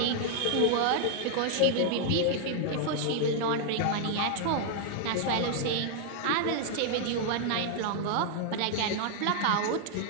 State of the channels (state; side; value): different; both; correlation 0.00